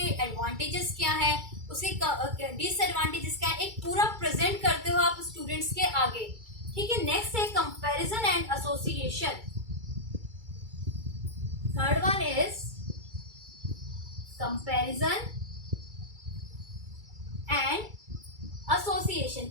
एडवांटेजेस क्या है, उसके डिसएडवांटेजेस क्या है, एक पूरा प्रेजेंट करते हो आप स्टूडेंट्स के आगे। ठीक है, नेक्स्ट है comparison and association. Third one is comparison and association.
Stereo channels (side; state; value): left; late; 2.3 ms